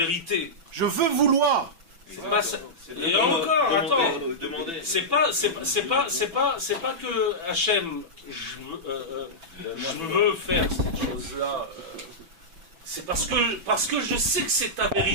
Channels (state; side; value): late; left; 6.0 ms